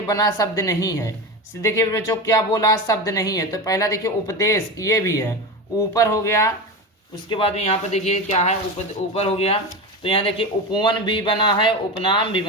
बना शब्द नहीं है। देखिए बच्चों क्या बोला, शब्द नहीं है। तो पहला देखिए उपदेश, ये भी है, ऊपर हो गया। उसके बाद में यहाँ पर देखिए क्या है, ऊपर हो गया। तो यहाँ देखिए उपवन भी बना है, उपनाम भी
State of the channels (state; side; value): normal; both; correlation 0.22